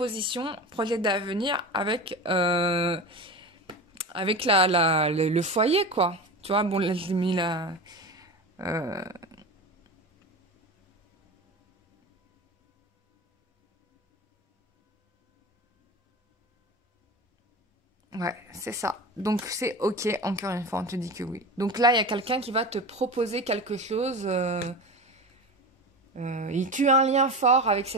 projet d'avenir avec... avec le foyer, quoi. Tu vois, bon, là, j'ai mis la... Ouais, c'est ça. Donc, c'est OK, encore une fois, on te dit que oui. Donc là, il y a quelqu'un qui va te proposer quelque chose. Il tue un lien fort avec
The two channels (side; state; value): both; normal; correlation 0.27